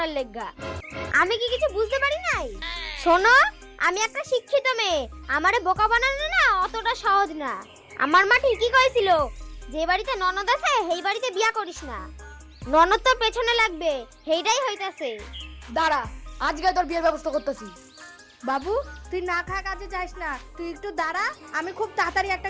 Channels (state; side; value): identical; both; correlation 1.00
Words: লেগা। আমি কি কিছু বুঝতে পারি নাই? শোনো আমি একটা শিক্ষিত মেয়ে, আমারে বোকা বানানো না অতটা সহজ না। আমার মা ঠিকই কইছিল যে বাড়িতে ননদ আছে সেই বাড়িতে বিয়া করিস না, ননদ তোর পেছনে লাগবে, সেইটাই হইতাছে। দাঁড়া আজকে তোর বিয়ের ব্যবস্থা করতেছি। বাবু তুই না খা কাজে যাস না, তুই একটু দাঁড়া, আমি খুব তাড়াতাড়ি একটা